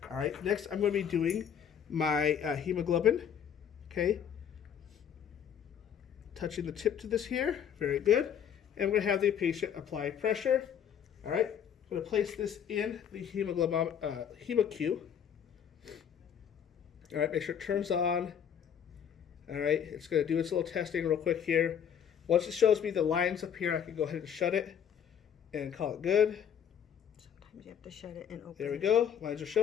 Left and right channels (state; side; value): quieter; right; 8.4 dB